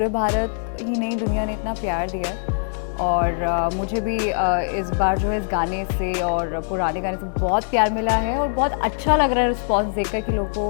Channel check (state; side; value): silent; right; digital silence